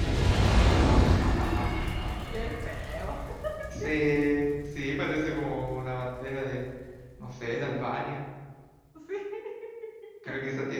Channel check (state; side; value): identical; both; correlation 1.00